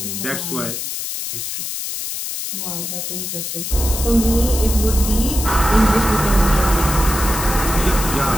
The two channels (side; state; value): left; noise; hiss, 5 dB below the sound